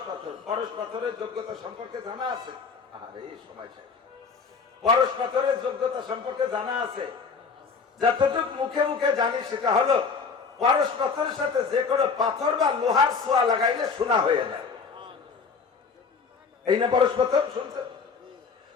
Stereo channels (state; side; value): quieter; right; 5.2 dB